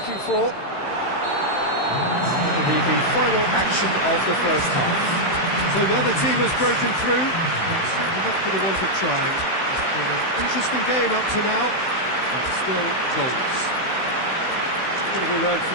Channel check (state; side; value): late; right; 16 ms